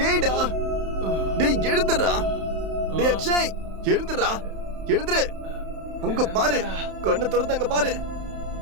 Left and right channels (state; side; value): late; left; 31 ms